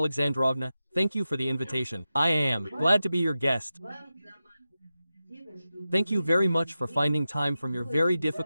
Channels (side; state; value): both; inverted; correlation -0.92